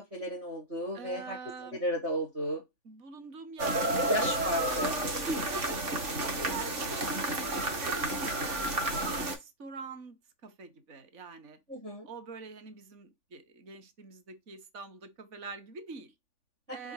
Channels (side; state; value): left; late; 3.5 ms